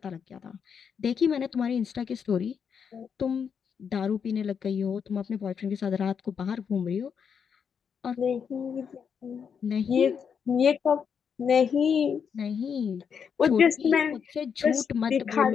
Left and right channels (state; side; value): quieter; right; 6.9 dB